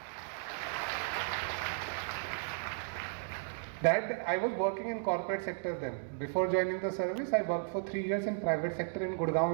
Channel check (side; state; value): left; silent; digital silence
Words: That I was working in corporate sector then. Before joining the service, I worked for 3 years in private sector in